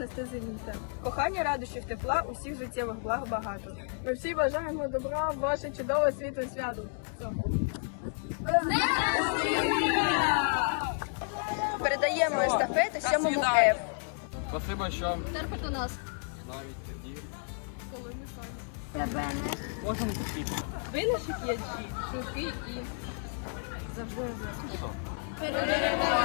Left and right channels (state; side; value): silent; right; 57 dB below the other